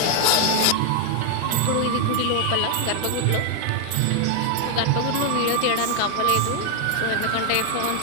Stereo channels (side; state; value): both; different; correlation 0.00